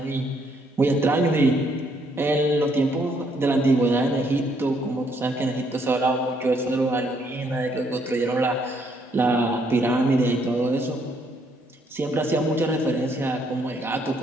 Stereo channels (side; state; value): both; normal; correlation 0.70